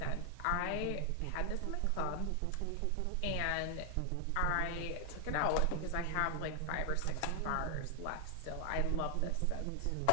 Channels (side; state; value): both; different; correlation 0.00